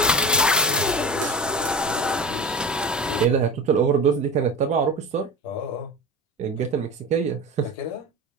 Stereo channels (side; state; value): both; normal; correlation 0.29